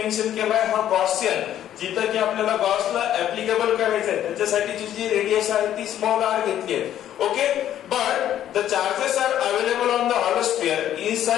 केलाय हा गॉसियन, जिथं की आपल्याला गॉसला ऍप्लिकेबल करायचं आहे त्याच्यासाठीची जी रेडियस आहे ती स्मॉल r घेतली आहे. Okay, but the charges are available on the hollow sphere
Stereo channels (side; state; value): right; quieter; 11.3 dB